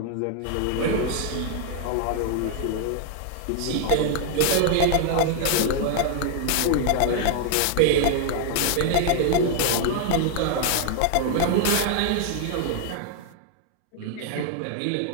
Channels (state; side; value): different; both; correlation 0.00